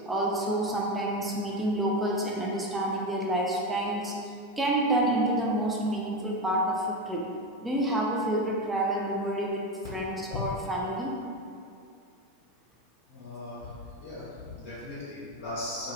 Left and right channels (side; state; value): both; normal; correlation 0.17